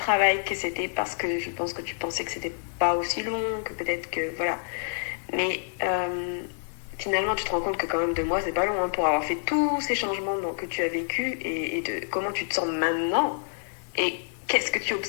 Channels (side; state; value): right; silent; digital silence